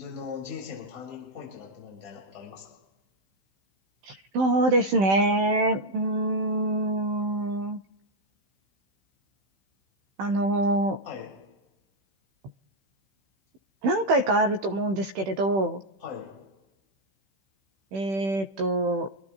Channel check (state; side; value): late; left; 16 ms